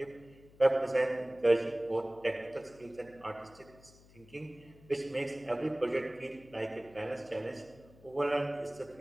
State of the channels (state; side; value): noise; left; hum, 24 dB below the sound